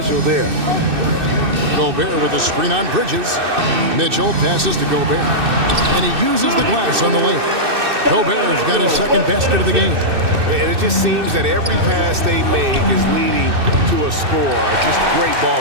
there. Gobert with a screen on Bridges. Mitchell passes to Gobert. And he uses the glass on the lane. Gobert's got his second basket of the game. And it just seems that every pass they make is leading to a score. Just great ball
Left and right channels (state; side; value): late; left; 2.6 ms